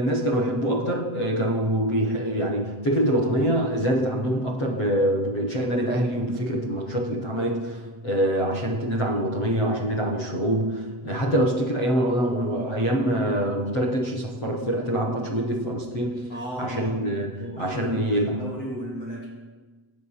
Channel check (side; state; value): right; late; 7.9 ms